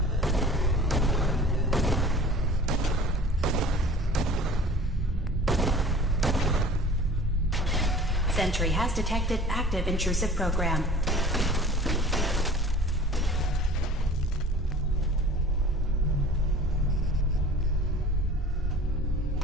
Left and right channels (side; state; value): both; normal; correlation 0.44